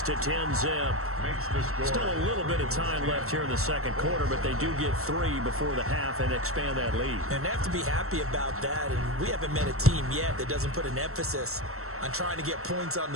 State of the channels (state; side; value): late; left; 0.63 ms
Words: to 10-zip. Still a little bit of time left here in the 2nd quarter, but they do get 3 before the half and expand that lead. And they have to be happy about that. And we haven't met a team yet that doesn't put an emphasis on trying to get points on